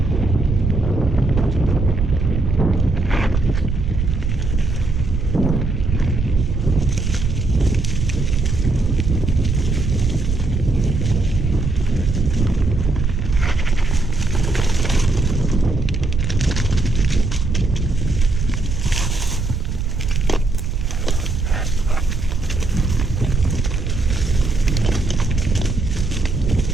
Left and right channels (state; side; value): noise; right; rumble, 2 dB below the sound